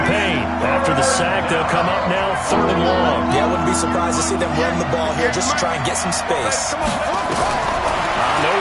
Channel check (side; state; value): both; identical; correlation 1.00